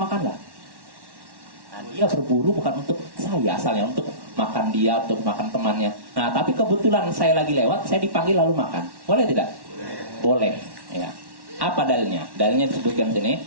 Nah, dia berburu bukan untuk saya asalnya, untuk makan dia, untuk makan temannya. Nah, tapi kebetulan saya lagi lewat, saya dipanggil lalu makan. Boleh tidak? Boleh. Ya. Apa dalilnya? Dalilnya disebutkan sini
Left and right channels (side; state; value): left; late; 1.1 ms